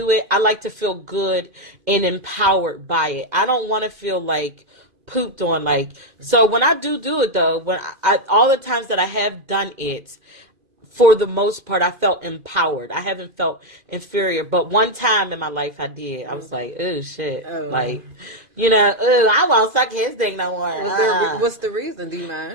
it, I like to feel good and empowered by it. I don't want to feel like pooped on. Like, so when I do it though, when all the times that I have done it, for the most part, I felt empowered. I haven't felt inferior. But one time in my life, I did. I was like, oh, shit. Oh. Like, I won't suck his dick no more. What's the reason? Do you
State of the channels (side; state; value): left; late; 2.1 ms